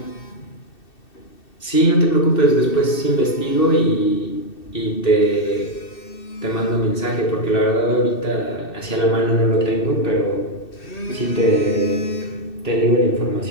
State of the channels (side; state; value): right; late; 2.6 ms